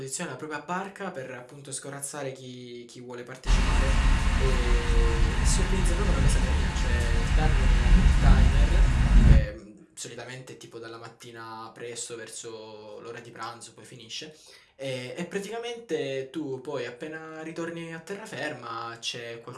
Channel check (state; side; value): identical; both; correlation 1.00